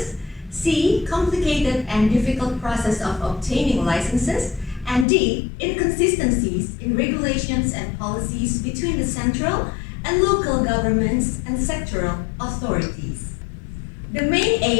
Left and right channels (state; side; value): drops out; right; at 5.1 s